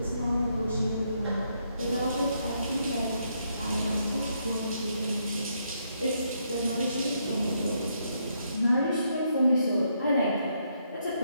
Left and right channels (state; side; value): inverted; both; correlation -0.76